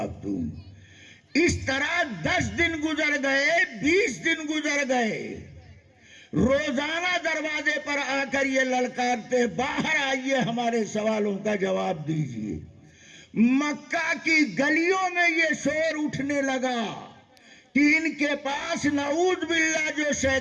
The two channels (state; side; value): identical; both; correlation 1.00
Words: دوں۔ اس طرح 10 دن گزر گئے، 20 دن گزر گئے، روزانہ دروازے پر آ کر یہ للکارتے باہر آئیے، ہمارے سوالوں کا جواب دیجیے۔ مکہ کی گلیوں میں یہ شور اٹھنے لگا کہ ان کے پاس نعوذ باللہ جو